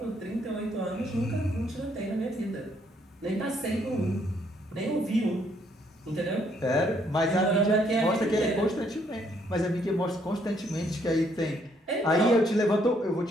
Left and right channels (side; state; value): both; normal; correlation 0.69